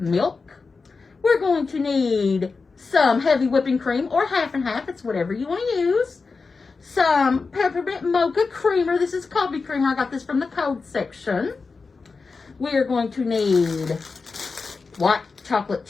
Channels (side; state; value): right; quieter; 4.4 dB